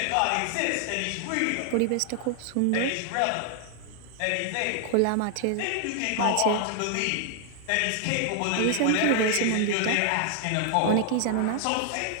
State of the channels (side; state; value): both; different; correlation 0.00